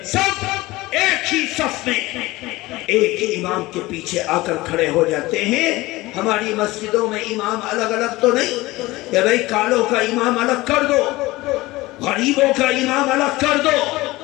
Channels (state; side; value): quieter; right; 19.6 dB